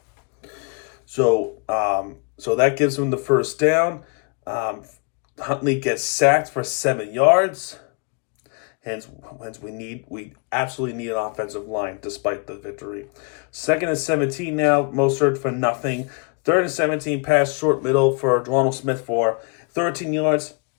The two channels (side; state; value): right; quieter; 34.3 dB